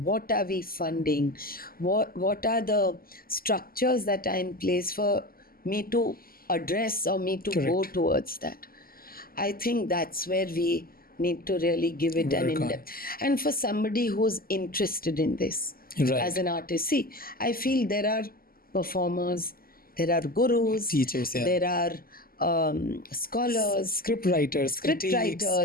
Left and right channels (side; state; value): right; late; 0.42 ms